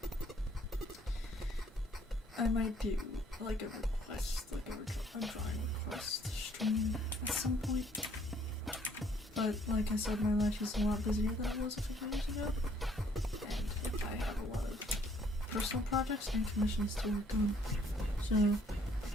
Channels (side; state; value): both; normal; correlation 0.63